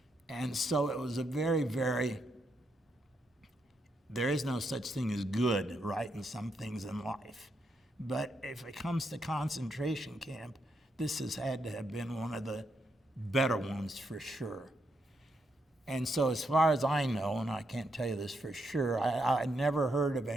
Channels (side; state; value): both; normal; correlation 0.80